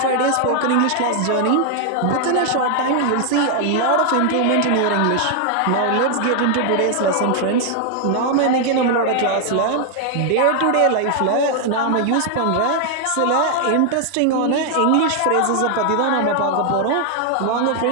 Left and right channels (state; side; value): different; both; correlation 0.00